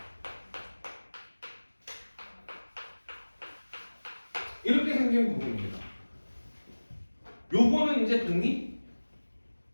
이렇게 생긴 부분입니다. 요거는 이제 독립?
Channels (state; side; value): inverted; both; correlation -1.00